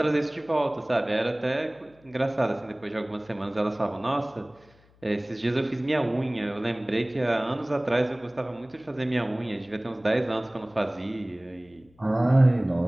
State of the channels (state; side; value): noise; left; hum, 30 dB below the sound